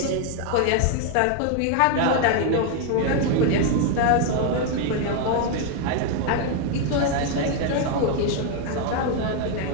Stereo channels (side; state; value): both; different; correlation 0.01